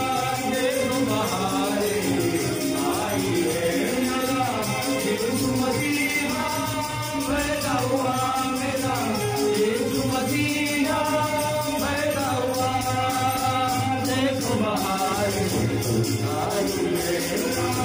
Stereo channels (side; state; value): both; identical; correlation 1.00